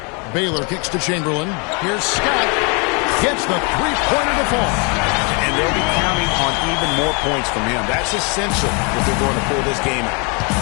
Baylor kicks to Chamberlain. Here's Scott. Gets the three-pointer to fall. And they'll be counting on even more points from him. That's essential if they're going to pull this game out.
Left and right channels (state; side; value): quieter; right; 33.0 dB